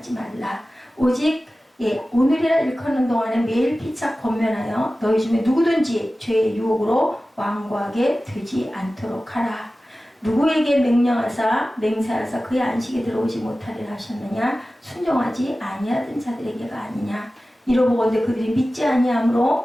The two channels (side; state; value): both; normal; correlation 0.96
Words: 말라. 오직 오늘이라 일컫는 동안에 매일 피차 권면하여 너희 중에 누구든지 죄의 유혹으로 완고하게 되지 않도록 하라. 누구에게 명령하사 맹세하사 그의 안식에 들어오지 못하리라 하셨느냐? 순종하지 아니하던 자들에게가 아니냐? 이러보건대 그들이 믿지